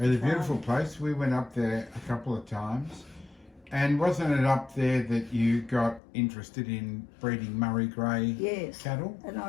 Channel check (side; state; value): right; drops out; at 6.0 s